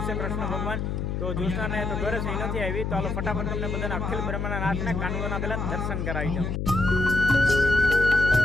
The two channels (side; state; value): left; noise; hum, 2 dB below the sound